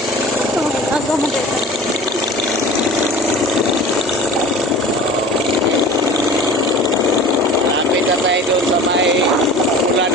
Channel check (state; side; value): normal; both; correlation 0.39